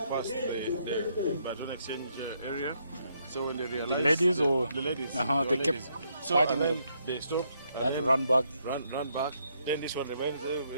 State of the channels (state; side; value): inverted; both; correlation -0.74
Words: passed the baton exchange area. So when they realized... The ladies or... The ladies. They kept so fighting and then them. they stopped. They had to run back. Run back. Then this one remained there.